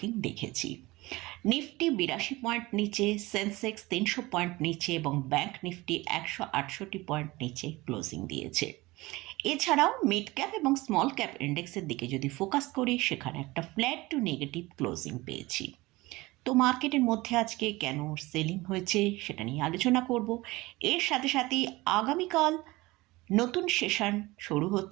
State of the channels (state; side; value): quieter; left; 20.8 dB